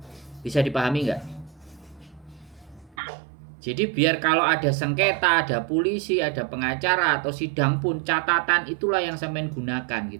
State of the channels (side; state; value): left; drops out; at 3.0 s